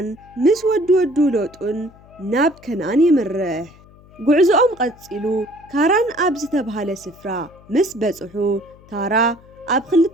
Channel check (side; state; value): left; noise; hum, 25 dB below the sound